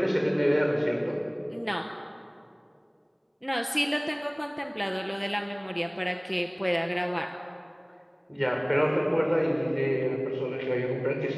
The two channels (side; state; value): both; identical; correlation 1.00